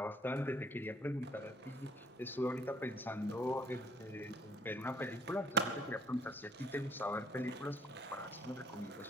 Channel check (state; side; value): normal; both; correlation 0.63